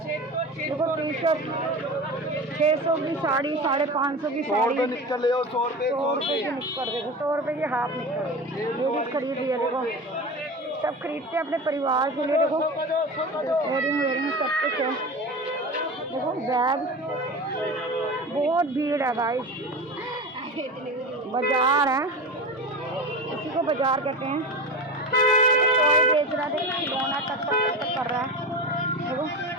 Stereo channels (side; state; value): both; normal; correlation 0.28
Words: देखो टी शर्ट 600 की साड़ी, 550 की साड़ी, 100 रुपये की निक्कर। देखो 100 रुपये की हाफ निक्कर लेडीज खरीद रही है। देखो सब खरीदते हैं अपने परिवार के लिए। देखो वेयरिंग सब कुछ है। देखो बैग, बहुत भीड़ है भाई, बाजार है, इसी को बाजार कहते हैं। कोई बेच रहा है, देखो खिलौना टक कर रहा है। देखो